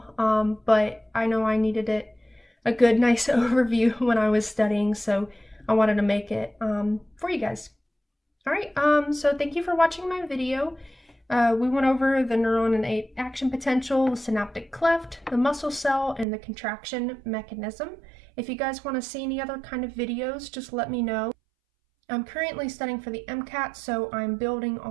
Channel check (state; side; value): drops out; left; at 16.2 s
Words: but I know I needed a good, nice overview when I was studying, so I wanted to make it for you guys. All right, so thank you for watching my video. We went over the neuron and action potential, the synaptic cleft, the muscle cell, and the contraction mechanism. If you guys want to see any other kind of videos, just let me know. I'm currently studying for the MCAT, so I'm building